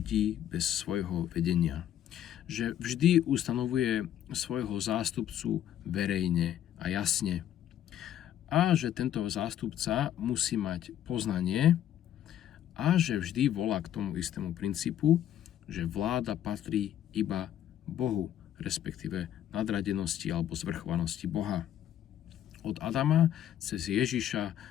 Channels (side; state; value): right; quieter; 11.0 dB